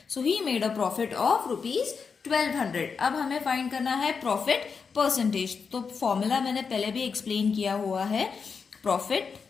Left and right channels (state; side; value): quieter; right; 5.6 dB